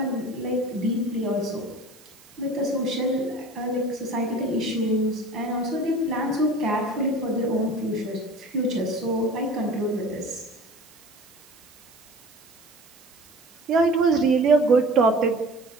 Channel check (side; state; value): right; noise; hiss, 26 dB below the sound